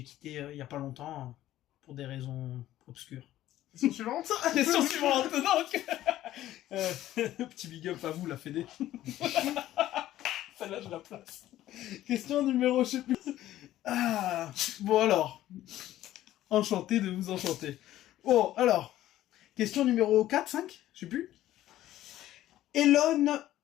quitté il n'y a pas longtemps pour des raisons obscures. Question suivante. Question suivante, donc petit big up à vous, la Fédé. Celle-là, je la place. Question numéro, je sais plus. Ah, bon alors. Enchanté de vous enchanter. Bon, alors. Question numéro 4, 5, je sais plus. Elon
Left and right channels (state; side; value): quieter; right; 13.9 dB